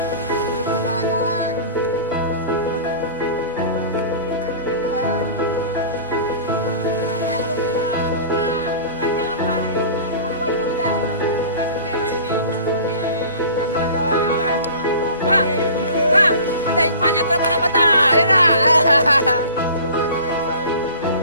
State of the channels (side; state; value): both; inverted; correlation -0.41